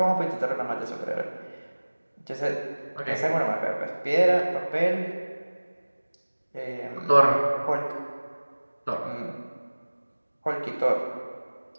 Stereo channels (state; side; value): inverted; both; correlation -1.00